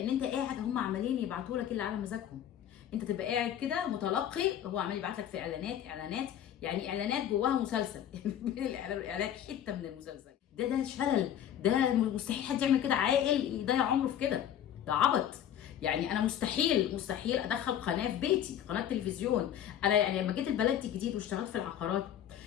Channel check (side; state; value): right; quieter; 10.3 dB